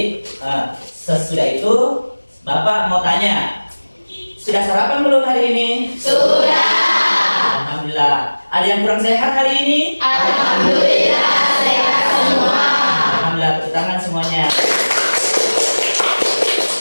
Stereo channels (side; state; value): both; inverted; correlation -1.00